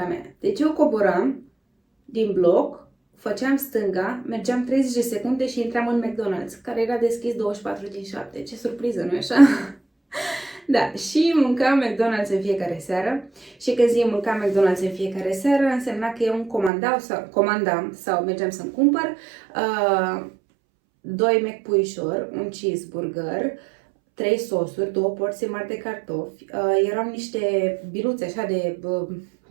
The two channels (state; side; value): drops out; left; at 16.7 s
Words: mea. Deci eu coboram din bloc, făceam stânga, mergeam 30 de secunde și intram în McDonald's, care era deschis 24/7. Ce surpriză, nu-i așa? Da, și mâncam McDonald's în fiecare seară. Și când zic mâncam McDonald's în fiecare seară, însemna că eu îmi comandam sau mergeam să-mi cumpăr 2 McPuișori, un cheeseburger, 3 sosuri, 2 porții mari de cartofi, erau niște biluțe așa de